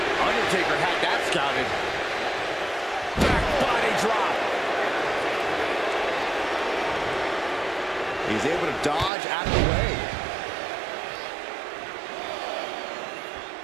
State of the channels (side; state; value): left; drops out; at 9.1 s